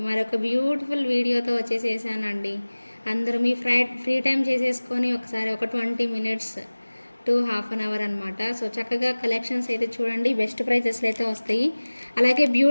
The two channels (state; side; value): inverted; both; correlation -1.00